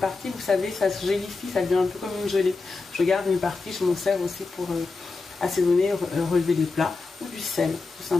vous savez, ça se gélifie, ça devient un peu comme une gelée. Je garde une partie, je m'en sers aussi pour assaisonner, relever les plats, ou du sel, tout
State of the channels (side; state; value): right; quieter; 4.0 dB